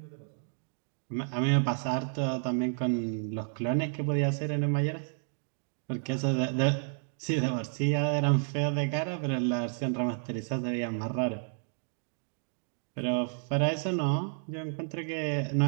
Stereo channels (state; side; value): silent; left; 57 dB below the other